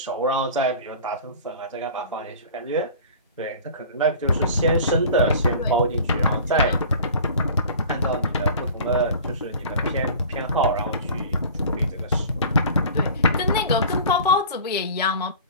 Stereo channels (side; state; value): both; inverted; correlation -0.41